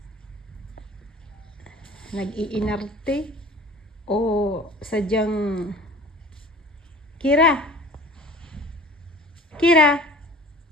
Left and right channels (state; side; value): normal; both; correlation 0.43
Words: nag-iinarte o sadyang Kira. Kira.